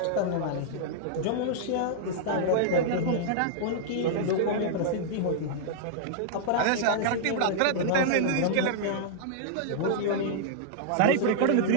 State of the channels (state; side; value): different; both; correlation -0.01